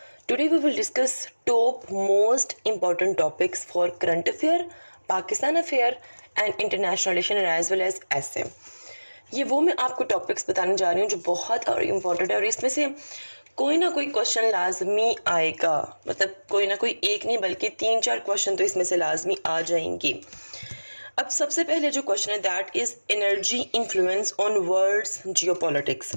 Today we will discuss top most important topics for current affair, Pakistan affair and international relation as well as essay. ये वो मैं आपको topics बताने जा रही हूँ जो बहुत और इम्पोर्टेंट है और इसमें से कोई ना कोई क्वेश्चन लाजमी आएगा, मतलब कोई ना कोई एक नहीं बल्कि 3-4 क्वेश्चन तो इसमें से लाजमी आ जाएंगे। अब सबसे पहले जो क्वेश्चन है that is energy influence on world's geopolitics.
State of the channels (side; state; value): both; inverted; correlation -1.00